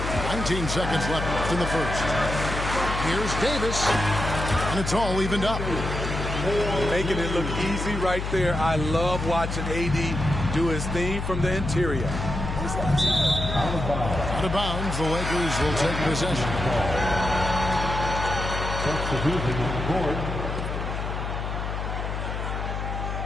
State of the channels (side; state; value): left; noise; hum, 4 dB below the sound